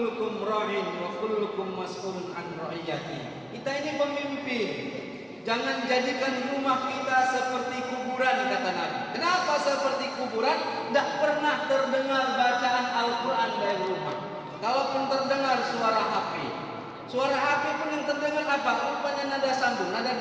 ra'in wa kullukum mas'ulun an ra'iyati. Kita ini pemimpin. Jangan jadikan rumah kita seperti kuburan kuburan, kata Nabi. Kenapa seperti kuburan? Tidak pernah terdengar bacaan Al-Quran dari rumah. Kalaupun terdengar suara HP, suara HP pun yang terdengar apa? Rupanya nada sambung, nada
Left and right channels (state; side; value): identical; both; correlation 1.00